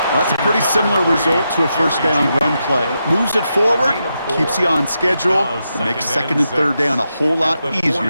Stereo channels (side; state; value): both; inverted; correlation -0.85